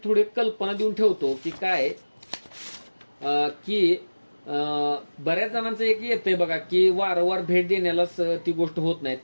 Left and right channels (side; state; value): both; inverted; correlation -1.00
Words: थोडी कल्पना देऊन ठेवतो की काय की बऱ्याच जणांचं एक येतंय बघा की वारंवार भेट देण्यालाच ती गोष्ट होत नाही.